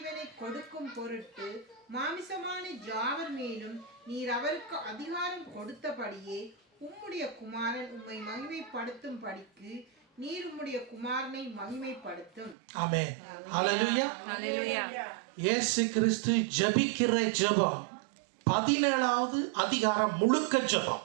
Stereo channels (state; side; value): drops out; left; at 12.6 s